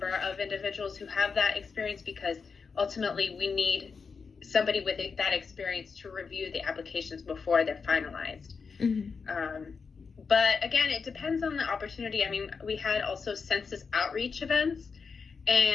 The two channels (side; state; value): right; quieter; 5.3 dB